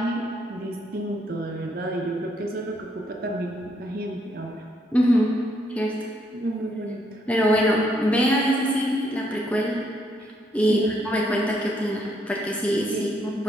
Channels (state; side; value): normal; both; correlation 0.73